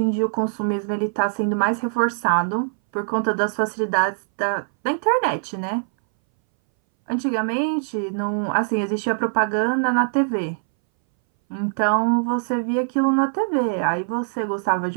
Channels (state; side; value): silent; left; 61 dB below the other